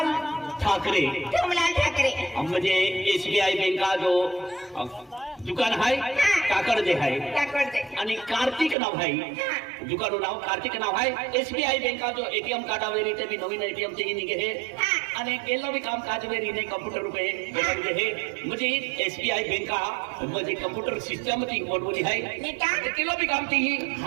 ठाकरे तुमलाल ठाकरे म्हणजे एसबीआय बँका जो दुकान हाय काकडे हाय टाकडते आणि कार्तिक नाव हाय दुकान नाव कार्तिक नाव हाय एसबीआय बँका जो एटीएम कार्डावेरी ते बी नवीन एटीएम चे निघे हे आणि केलं बी काम काज वेरी ने कम्प्युटर रुपये बनवले हे म्हणजे एसबीआय बँका म्हणजे कम्प्युटर सिस्टम ती बनवली आहे नीटा केलं बी काम ती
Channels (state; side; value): drops out; left; at 8.8 s